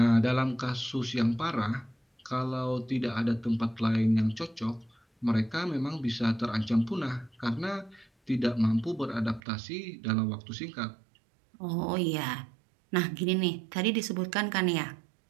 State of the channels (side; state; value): left; drops out; at 9.4 s